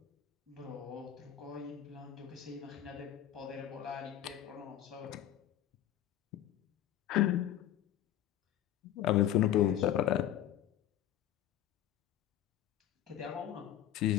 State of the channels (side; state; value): right; quieter; 11.9 dB